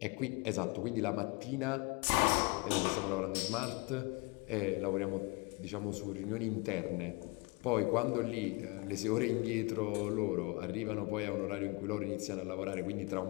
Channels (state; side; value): quieter; right; 27.2 dB